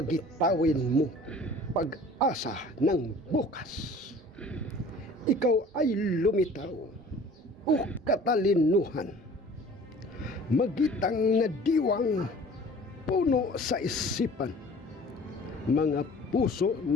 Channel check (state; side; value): normal; both; correlation 0.47